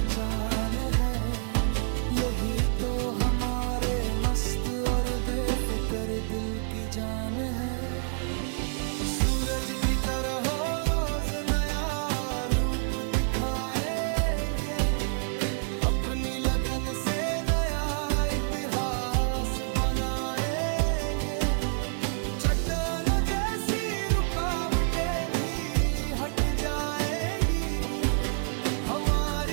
है। यही तो हमारे मस्त और बेफिक्र दिल की जान है। सूरज की तरह हो रोज नया रूप दिखाएंगे, अपनी लगन से नया इतिहास बनाएंगे। चट्टानों जैसी रुकावटें भी हट जाएंगी,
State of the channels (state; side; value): silent; left; digital silence